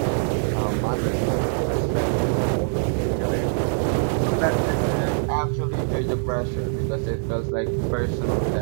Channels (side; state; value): left; silent; 59 dB below the other